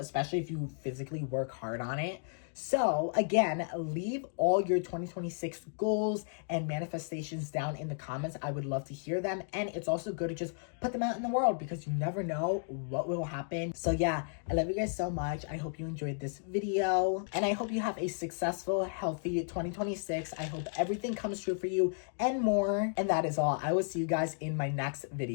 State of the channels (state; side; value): silent; right; digital silence